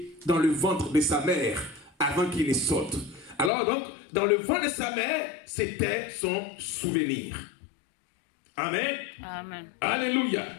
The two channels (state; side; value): drops out; right; at 3.5 s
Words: dans le ventre de sa mère avant qu'il ne saute. Alors donc, dans le ventre de sa mère, c'était son souvenir. Amen. Amen. Alléluia.